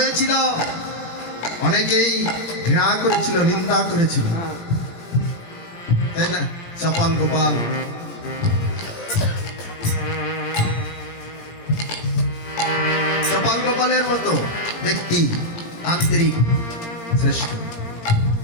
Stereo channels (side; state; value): right; late; 17 ms